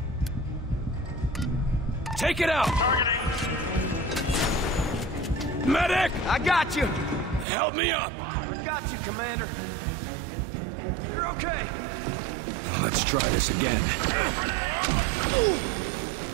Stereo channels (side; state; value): left; drops out; at 7.5 s